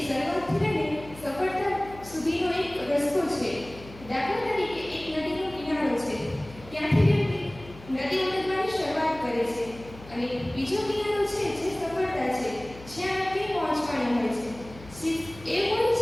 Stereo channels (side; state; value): left; noise; hum, 18 dB below the sound